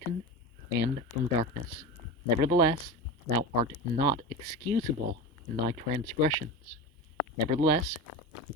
and from darkness. Nevertheless, thou art not excusable in thy transgressions. Nevertheless,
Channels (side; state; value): both; normal; correlation 0.25